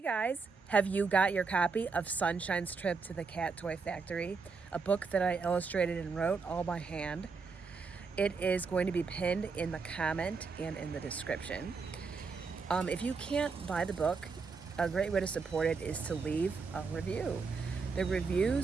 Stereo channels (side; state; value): left; quieter; 4.8 dB